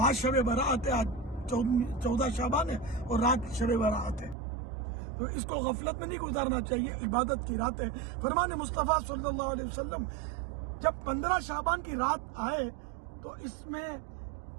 شب برات ہے، آج 14 شعبان ہے اور رات شب برات ہے، تو اس کو غفلت میں نہیں گزارنا چاہیے، عبادت کی رات ہے۔ فرمان مصطفیٰ صلی اللہ علیہ وسلم جب 15 شعبان کی رات آئے تو اس میں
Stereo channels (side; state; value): left; drops out; at 4.4 s